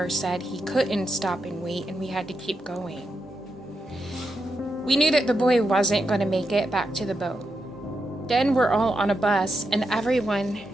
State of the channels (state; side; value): normal; both; correlation 0.85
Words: said he couldn't stop and wait and we had to keep going. We knew that the boy wasn't going to make it back to the boat. Then we're all on a bus and everyone